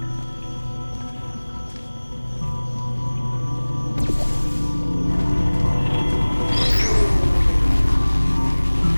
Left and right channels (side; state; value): both; inverted; correlation -1.00